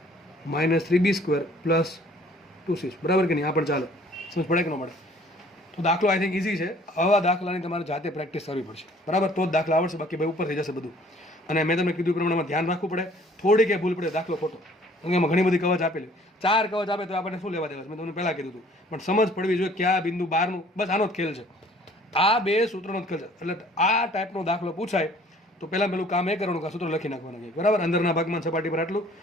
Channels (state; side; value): normal; both; correlation 0.55